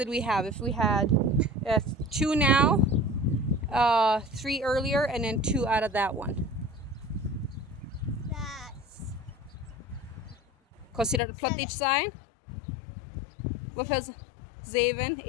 we have? If we had 2 now, 3 earlier, and then 2 out of that one. That's. Consider the plot each side. What was 7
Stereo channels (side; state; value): right; drops out; at 11.2 s